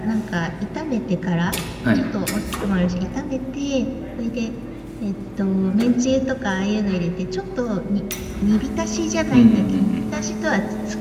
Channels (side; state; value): both; identical; correlation 1.00